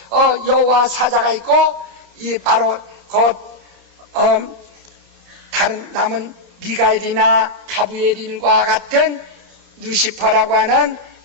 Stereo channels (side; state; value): left; late; 30 ms